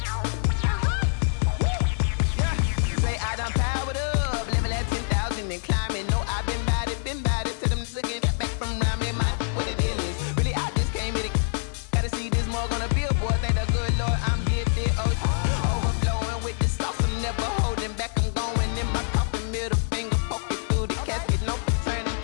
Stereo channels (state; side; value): silent; right; 55 dB below the other